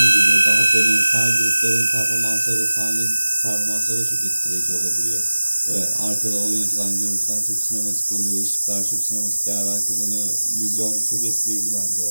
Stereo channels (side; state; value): both; inverted; correlation -1.00